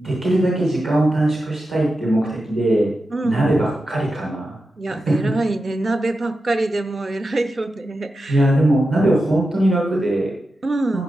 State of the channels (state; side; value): normal; both; correlation 0.90